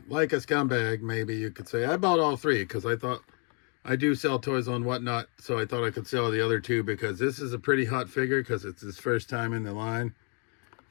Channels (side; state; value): right; quieter; 38.5 dB